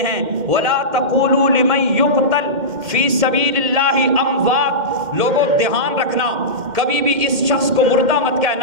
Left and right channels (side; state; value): left; late; 2.1 ms